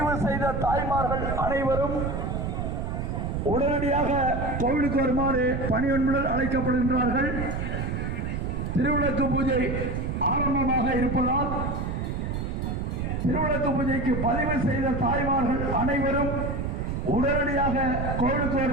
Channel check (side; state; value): right; noise; rumble, 2 dB below the sound